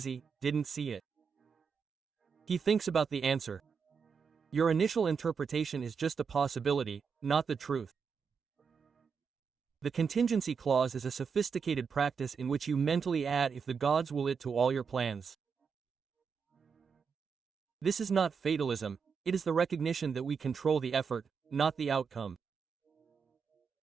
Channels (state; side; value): quieter; left; 6.0 dB